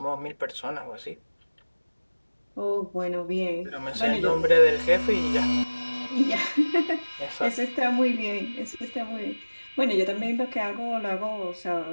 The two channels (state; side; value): inverted; both; correlation -1.00